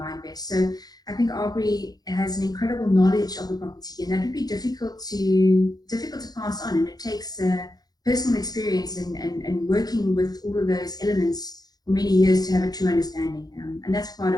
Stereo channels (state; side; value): late; right; 0.19 ms